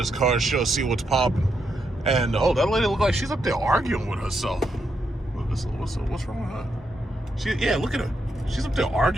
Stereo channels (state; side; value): normal; both; correlation 0.81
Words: car show, see what's popping. And, oh, that lady look like she's up there arguing with herself. What's wrong with her? Yeah, look at her. She's up there